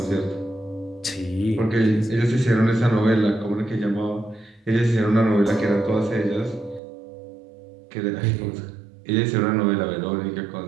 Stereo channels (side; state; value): left; drops out; at 6.8 s